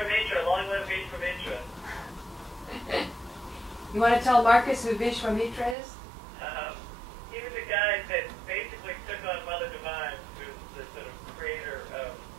long live Vishwamitra. You want to tell Marcus who Vishwamitra is? He was a guy that basically took on Mother Divine, who's the sort of creator of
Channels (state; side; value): drops out; left; at 5.8 s